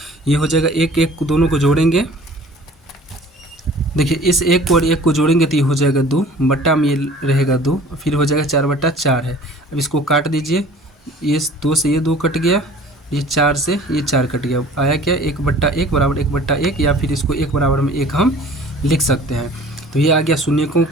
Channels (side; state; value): both; normal; correlation 0.48